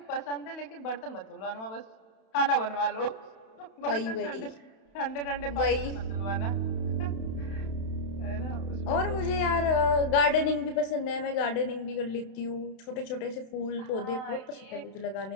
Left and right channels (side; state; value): right; late; 31 ms